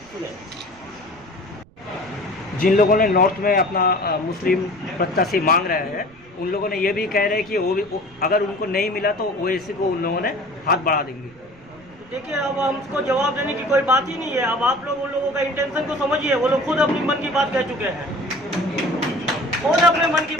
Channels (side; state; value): right; noise; rumble, 25 dB below the sound